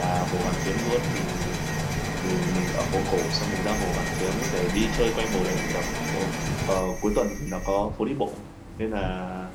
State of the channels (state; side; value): identical; both; correlation 1.00